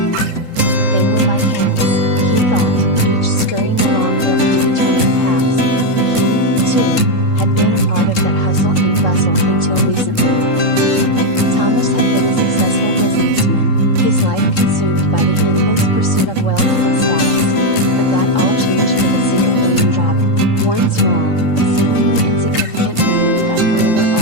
They were like ants, he thought, each scurrying along their predetermined paths. He, too, had been a part of that hustle and bustle until recently. Thomas had been a successful businessman, his life consumed by the endless pursuit of wealth and status. But that all changed with a single raindrop, one small, seemingly insignificant moment that forever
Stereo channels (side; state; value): right; late; 3.7 ms